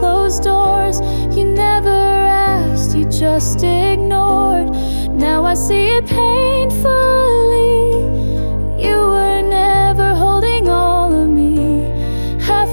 doors. You never asked, you just ignored. Now I see it painfully. You were never holding all of me.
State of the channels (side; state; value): both; inverted; correlation -1.00